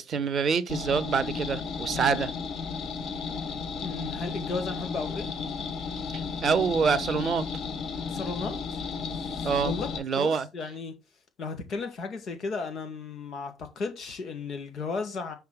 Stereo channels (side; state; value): both; normal; correlation 0.67